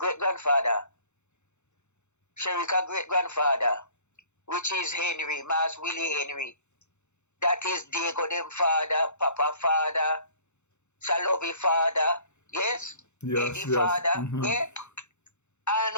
grandfather, Sharika great grandfather, which is Henry, Mas Willie Henry, that is Diego them father, Papa father, Salovi father, yes? Eddie father, Mm-hmm. yeah? And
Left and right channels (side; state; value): right; late; 0.83 ms